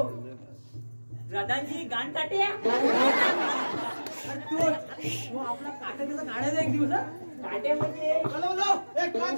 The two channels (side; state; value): both; inverted; correlation -1.00